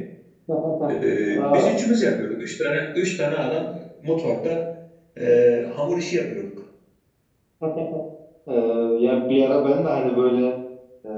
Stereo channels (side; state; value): both; identical; correlation 1.00